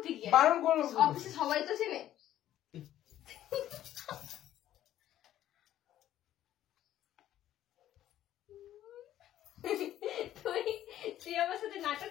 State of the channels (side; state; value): right; quieter; 12.4 dB